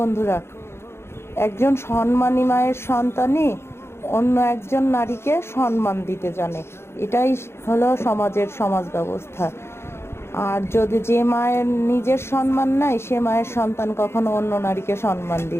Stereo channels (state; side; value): late; right; 0.12 ms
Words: একজন সম্মানী মায়ের সন্তানই অন্য একজন নারীকে সম্মান দিতে জানে। এটাই হলো সমাজ ব্যবস্থা। আর যদি যে মায়ের নিজের সম্মান নাই, সে মায়ের সন্তান কখনো অন্য নারীকে সম্মান